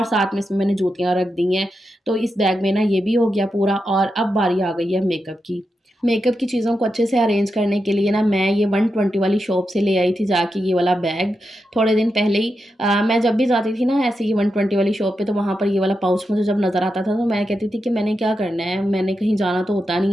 साथ में इसमें मैंने जूतियाँ रख दी हैं। तो इस बैग में ना ये भी हो गया पूरा और अब बारी आ गई है मेकअप की। मेकअप की चीज़ों को अच्छे से अरेंज करने के लिए ना मैं ये 120 वाली शॉप से ले आई थी जाके ये वाला बैग, थोड़े दिन पहले ही। मैं जब भी जाती थी ना ऐसे ही 120 वाली शॉप पे, तो वहाँ पर ये वाला पाउच मुझे जब नज़र आता था तो मैं कहती थी कि मैंने क्या करना है, मैंने कहीं जाना तो होता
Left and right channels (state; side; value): normal; both; correlation 0.87